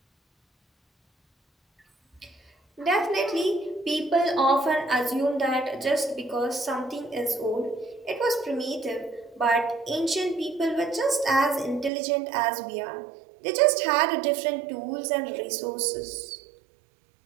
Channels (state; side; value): drops out; left; at 11.9 s